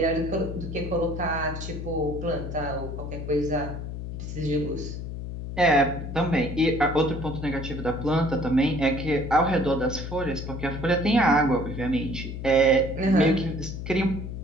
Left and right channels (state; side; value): noise; left; hum, 7 dB below the sound